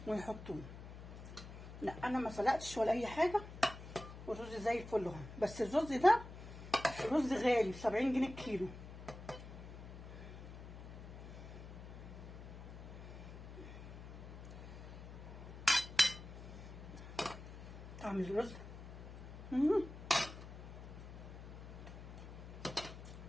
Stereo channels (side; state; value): left; noise; hum, 12 dB below the sound